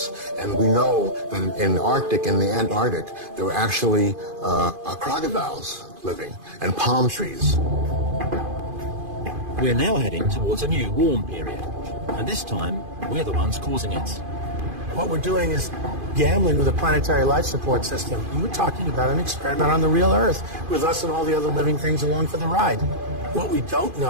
and we know that in the Arctic and the Antarctic, there were actually crocodiles living, and palm trees. We're now heading towards a new warm period, and this time we're the ones causing it. What we're doing is gambling with a planetary life support system. And we're talking about an experiment on the real Earth with us and all the other living things along for the ride. What we don't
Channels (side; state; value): left; late; 2.5 ms